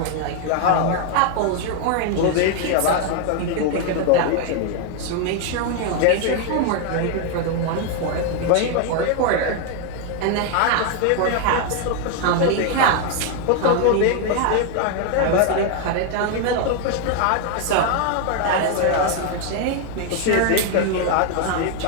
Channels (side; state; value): both; different; correlation 0.00